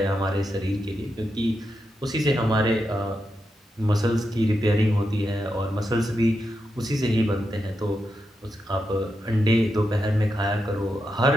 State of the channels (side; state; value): both; normal; correlation 0.86